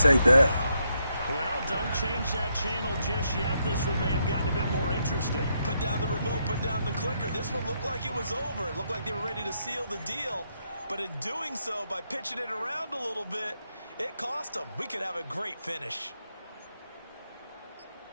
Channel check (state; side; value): inverted; both; correlation -0.78